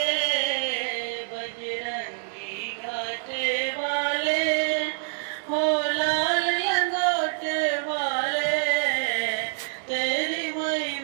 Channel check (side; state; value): left; silent; digital silence